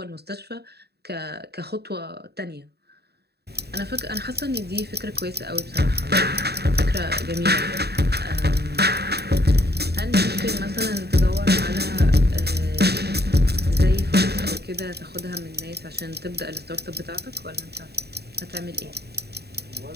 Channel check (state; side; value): late; left; 0.47 ms